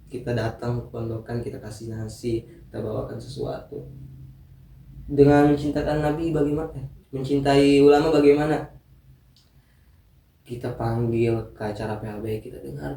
Kita datang ke pondokan, kita kasih nasi, kita bawakan sesuatu. Dengan mencintakan Nabi bagaimana? Mencintai ulama bagaimana? Kita panggil ke acara PHB, kita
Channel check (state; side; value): identical; both; correlation 1.00